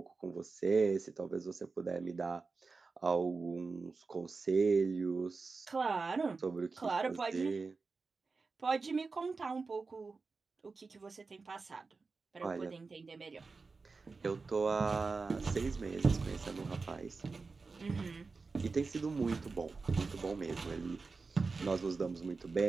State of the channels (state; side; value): quieter; left; 4.3 dB